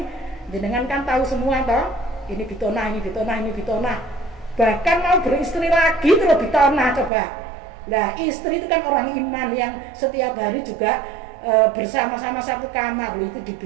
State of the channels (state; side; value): drops out; left; at 7.1 s